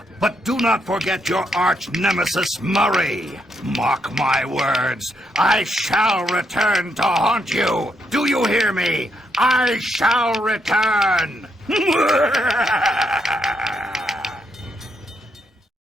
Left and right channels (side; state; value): both; normal; correlation 0.78